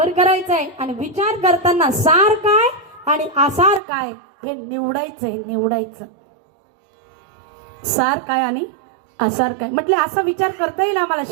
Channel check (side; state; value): left; drops out; at 3.8 s